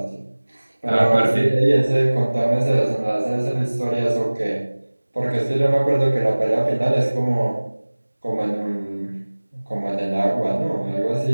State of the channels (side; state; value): both; inverted; correlation -1.00